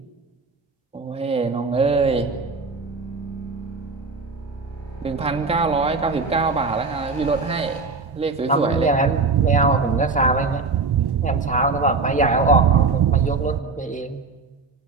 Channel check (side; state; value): left; quieter; 4.2 dB